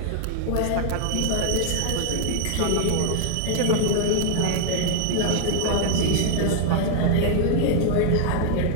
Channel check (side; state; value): both; different; correlation 0.00